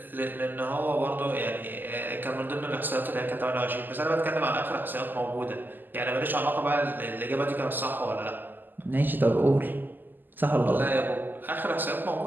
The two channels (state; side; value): late; left; 0.089 ms